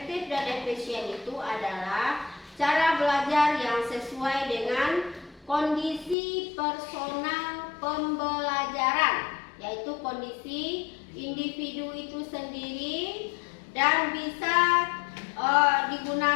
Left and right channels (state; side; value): drops out; right; at 6.2 s